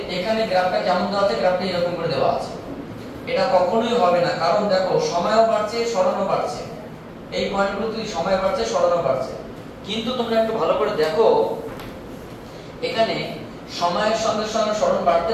এখানে গ্রাফটা কেমন দেওয়া আছে? গ্রাফটা এরকম করে দেওয়া আছে। এটা কখনোই হবে না, কারণ দেখো সময়ও বাড়ছে সরণও বাড়ছে, এই পয়েন্টগুলোতে সময় বাড়ছে সরণও বাড়ছে। কিন্তু তোমরা একটু ভালো করে দেখো, এখানে সময়ের সঙ্গে সঙ্গে সরণ বাড়তে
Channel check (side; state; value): both; identical; correlation 1.00